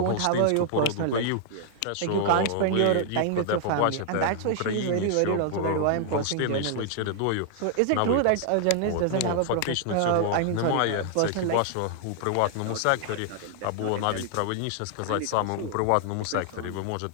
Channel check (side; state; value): both; different; correlation 0.00